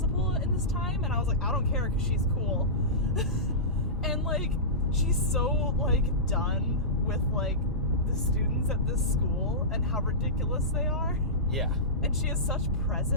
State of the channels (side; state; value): both; normal; correlation -0.17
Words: in this time? And I was like, I don't care because she's cool. And like, she's so like done with like the students at this school and how ridiculous they are. Yeah. And she has such